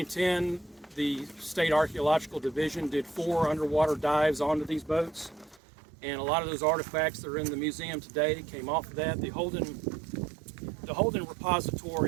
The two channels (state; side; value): drops out; left; at 5.6 s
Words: the State Archaeological Division did 4 underwater dives onto these boats, and a lot of those artifacts that are in the museum today came off of that. The Holden